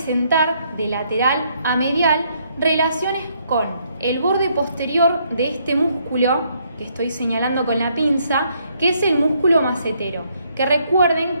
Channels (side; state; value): both; inverted; correlation -0.71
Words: de lateral a medial relaciones con el borde posterior de este músculo que estoy señalando con la pinza, que es el músculo macetero, que